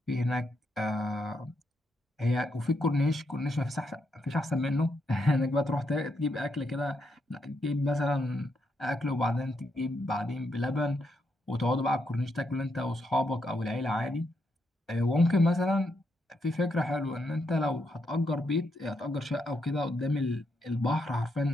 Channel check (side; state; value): both; normal; correlation 0.80